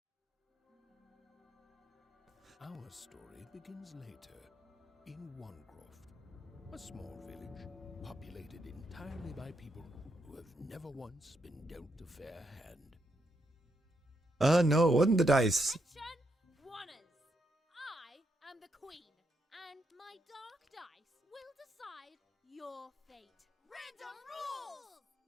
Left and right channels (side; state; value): both; normal; correlation 0.79